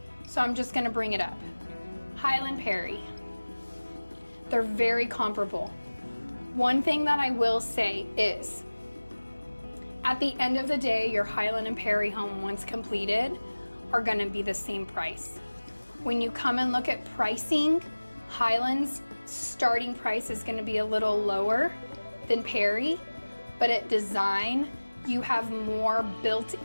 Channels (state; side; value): inverted; both; correlation -1.00